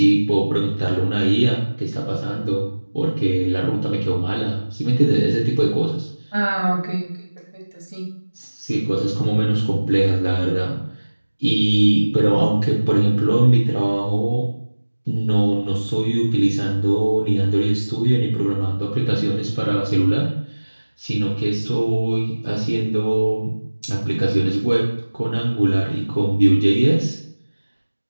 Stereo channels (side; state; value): both; inverted; correlation -1.00